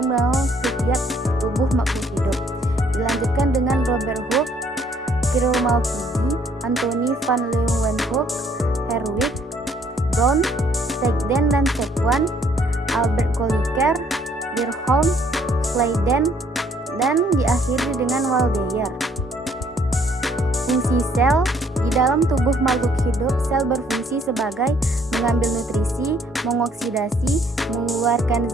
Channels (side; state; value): both; normal; correlation 0.64